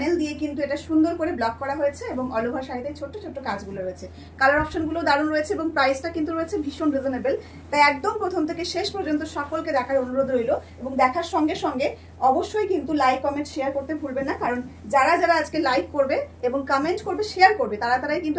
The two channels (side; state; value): both; identical; correlation 1.00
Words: দিয়ে কিন্তু এটা সুন্দর করে ব্লক করা হয়েছে এবং অল ওভার শাড়িতে ছোট্ট ছোট্ট কাজগুলো রয়েছে। কালার অপশনগুলো দারুণ রয়েছে এবং প্রাইসটা কিন্তু রয়েছে ভীষণ রিজনেবল। তাই একদম প্রথম থেকে শেষ পর্যন্ত সকলকে দেখার অনুরোধ রইল এবং দেখার সঙ্গে সঙ্গে অবশ্যই কিন্তু লাইক কমেন্ট শেয়ার করতে ভুলবেন না, কারণ যারা যারা আজকে লাইক করবে এবং কমেন্ট করবে শেয়ার করবে তারাই কিন্তু